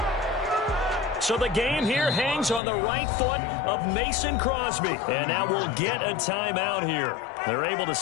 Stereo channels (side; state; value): right; drops out; at 2.6 s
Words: So the game here hangs on the right foot of Mason Crosby. And now we'll get a timeout here. They're able to